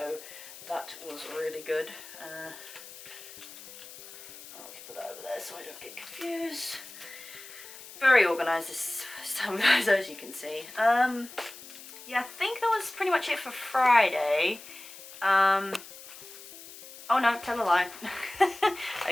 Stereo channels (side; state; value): left; noise; hiss, 16 dB below the sound